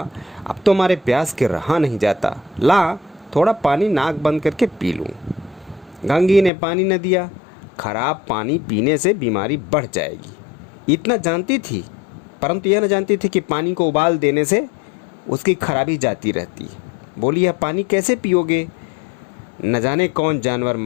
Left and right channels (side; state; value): right; drops out; at 6.5 s